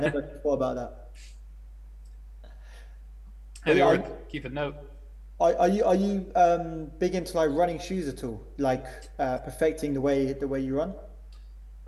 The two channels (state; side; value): identical; both; correlation 1.00